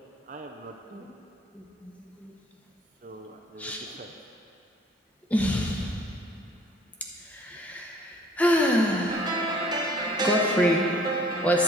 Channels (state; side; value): normal; both; correlation 0.55